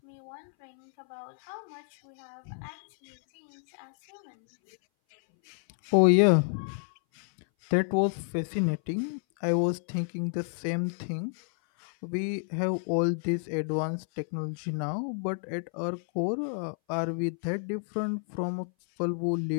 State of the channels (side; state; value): right; silent; 58 dB below the other